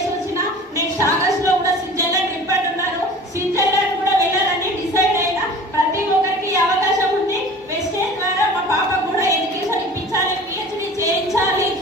వచ్చిన. నెక్స్ట్ ఆగస్ట్ లో కూడా స్విట్జర్లాండ్ ట్రిప్ అంటున్నారు. స్విట్జర్లాండ్ కూడా వెళ్ళాలని డిసైడ్ అయినా. ప్రతి ఒక్కరికి అవకాశం ఉంది. వెస్టేజ్ ద్వారా మా పాపకు కూడా ఎడ్యుకేషన్ ఇప్పించాలి, పిహెచ్డి చేయించాలి.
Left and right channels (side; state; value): both; normal; correlation 0.42